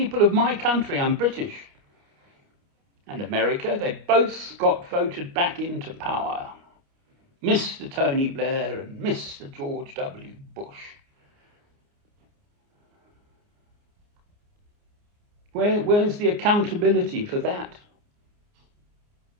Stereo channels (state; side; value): late; left; 29 ms